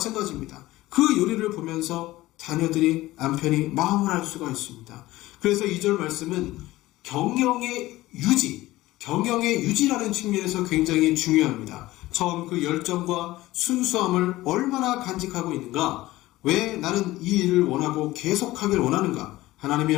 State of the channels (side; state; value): right; quieter; 17.5 dB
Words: 그 요리를 보면서 자녀들이, 남편이 마음을 알 수가 있습니다. 그래서 2절 말씀은 경영의 유지라는 측면에서 굉장히 중요합니다. 처음 그 열정과 순수함을 얼마나 간직하고 있는가? 왜 나는 이 일을 원하고 계속하길 원하는가? 하나님의